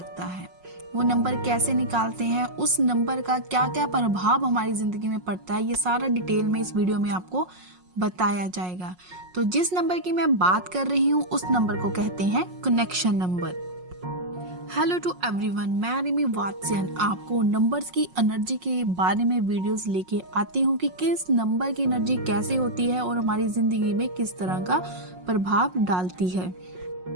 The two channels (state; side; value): late; left; 5.5 ms